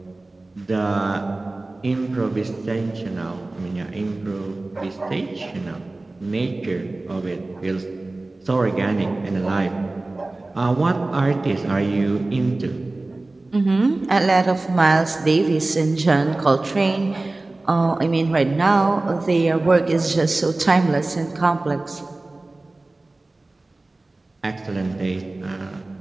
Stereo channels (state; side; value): quieter; left; 3.0 dB